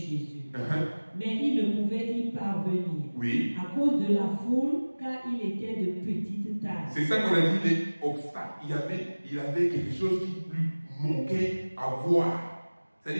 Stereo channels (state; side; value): inverted; both; correlation -1.00